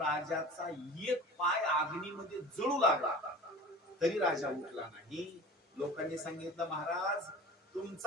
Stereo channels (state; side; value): normal; both; correlation 0.39